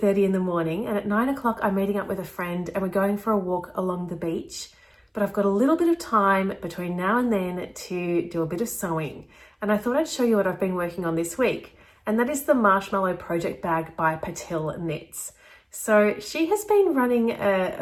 in the morning and at 9 o'clock I'm meeting up with a friend and we're going for a walk along the beach. But I've got a little bit of time between now and then to do a bit of sewing. And I thought I'd show you what I've been working on this week. And that is the Marshmallow Project bag by Penelope knits. So she has been running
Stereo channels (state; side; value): identical; both; correlation 1.00